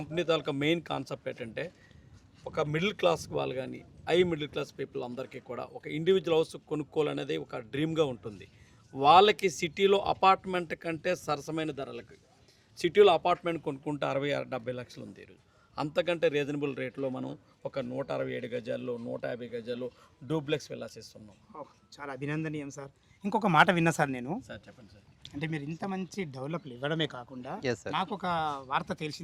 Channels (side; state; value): both; identical; correlation 1.00